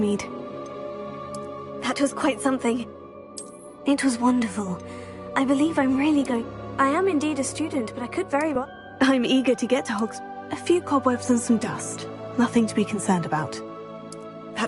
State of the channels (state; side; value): identical; both; correlation 1.00